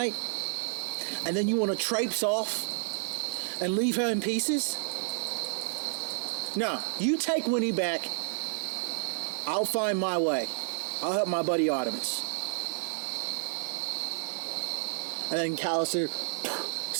And then you want to traipse off and leave her in pieces? No, you take Winnie back. I'll find my way. I'll help my buddy Artemis. And then Callister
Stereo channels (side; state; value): left; silent; digital silence